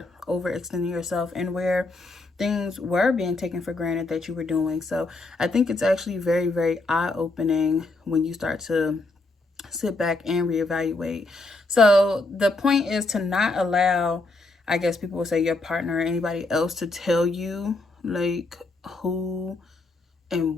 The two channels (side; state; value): right; quieter; 3.1 dB